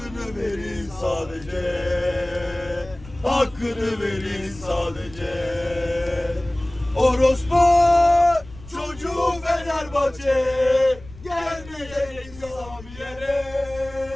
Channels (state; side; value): noise; left; rumble, 19 dB below the sound